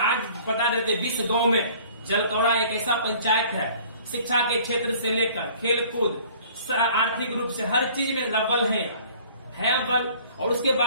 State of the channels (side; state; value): both; inverted; correlation -0.51